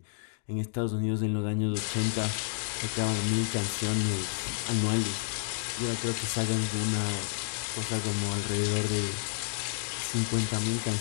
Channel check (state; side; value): silent; right; digital silence